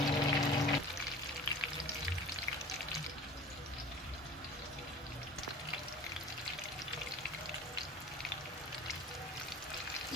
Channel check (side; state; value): both; normal; correlation 0.41